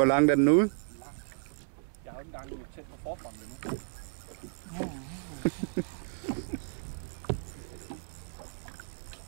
langt er den ude? Jeg har jo ikke engang tæt på forfronten endnu.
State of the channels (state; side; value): silent; left; 56 dB below the other